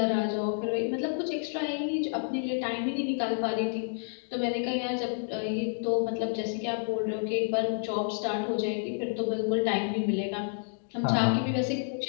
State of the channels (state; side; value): silent; right; digital silence